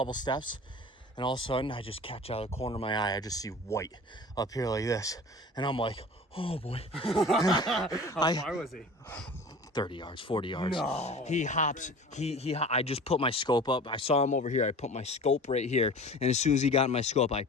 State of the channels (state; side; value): normal; both; correlation 0.40